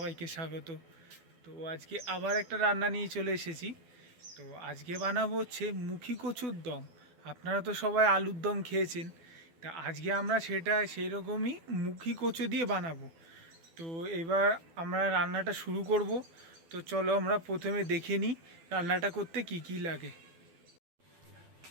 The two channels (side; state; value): left; late; 12 ms